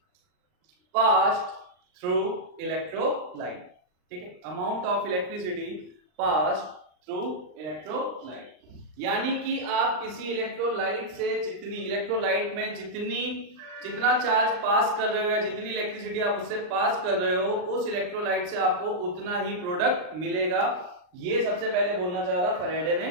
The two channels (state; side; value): late; left; 39 ms